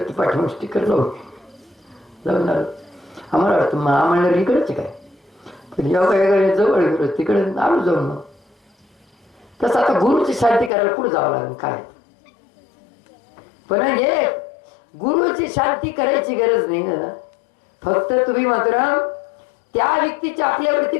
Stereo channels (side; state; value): right; drops out; at 10.7 s